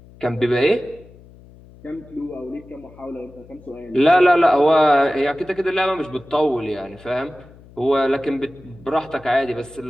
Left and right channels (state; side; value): noise; left; hum, 23 dB below the sound